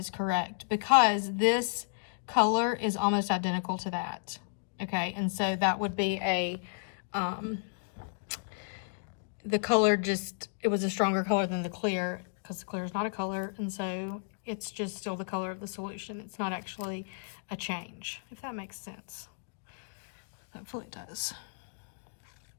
correct, because this color is almost identical to that. Okay, and so that would be a, the color just, it was a stronger color than the clear, because the clear is not a color, and so it's just still the color of the solution. It's not actually a change, if that makes sense. Hopefully it does.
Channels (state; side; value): silent; right; digital silence